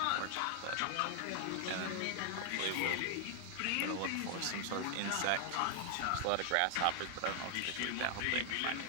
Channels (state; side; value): different; both; correlation 0.00